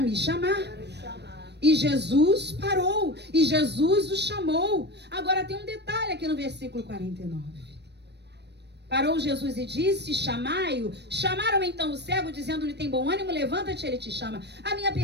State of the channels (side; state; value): left; late; 0.50 ms